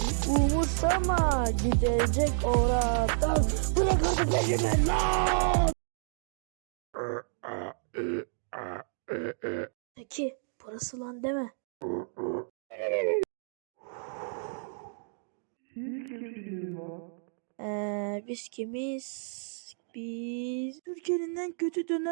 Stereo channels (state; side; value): silent; left; digital silence